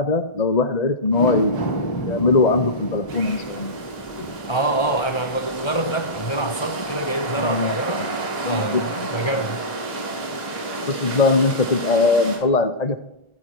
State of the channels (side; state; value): right; late; 1.4 ms